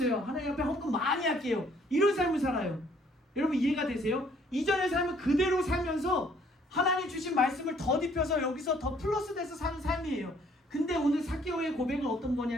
하나님 앞에 헌금 많이 할게요. 이런 삶을 살아요. 여러분 이해가 되세요? 이전의 삶을 그대로 살면서 하나님 주신 말씀을 덧입혀서 여기서 더 플러스 돼서 사는 삶이에요. 근데 오늘 삭개오의 고백은 어떤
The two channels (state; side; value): normal; both; correlation 0.62